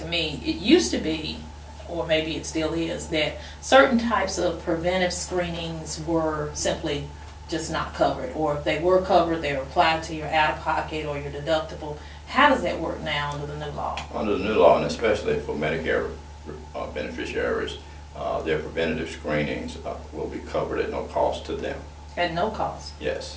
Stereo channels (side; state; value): both; identical; correlation 1.00